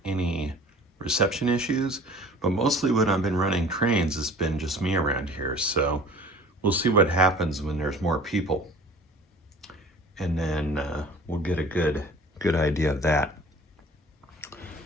any reception issues, but mostly when I've been running trains, it's been just me around here. So we'll see what happens when there's more people. And then we'll get a good idea of that.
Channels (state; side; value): normal; both; correlation 0.46